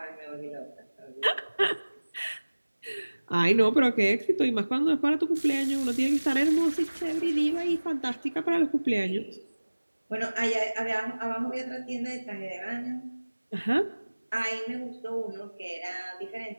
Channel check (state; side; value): inverted; both; correlation -1.00